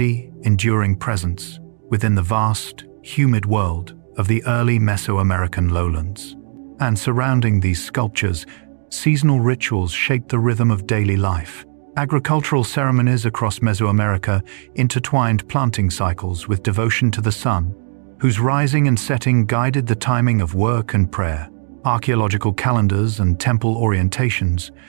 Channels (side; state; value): left; silent; digital silence